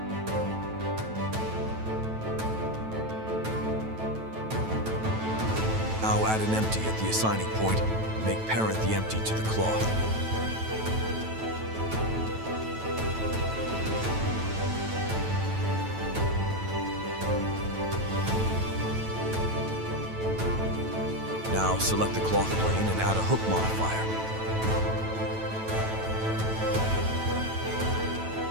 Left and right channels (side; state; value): left; late; 9.1 ms